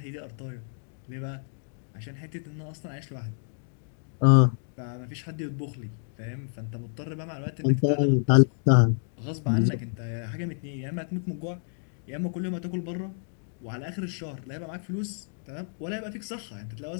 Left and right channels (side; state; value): right; silent; 58 dB below the other